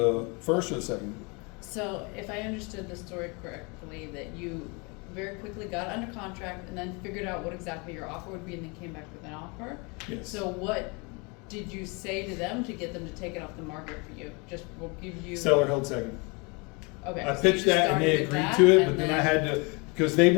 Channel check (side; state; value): right; quieter; 30.2 dB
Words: first or the second? So if I understood the story correctly, that you very quickly got under contract and then figured out what exactly your offer would be and then came back with an offer? Yes. So what did you say to them to get them to take it off the market for you? Just, we'll give you. Seller held second. Okay. I so you pitched just that and they started with agreed that, to it, and but then I had to, because they